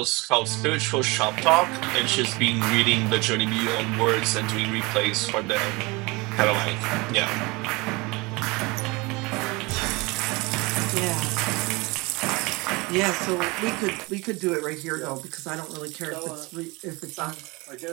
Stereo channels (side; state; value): left; quieter; 25.1 dB